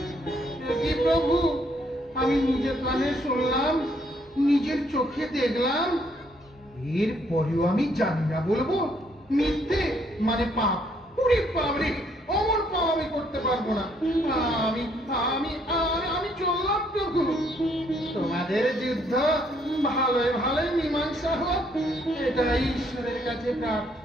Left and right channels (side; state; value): both; normal; correlation 0.69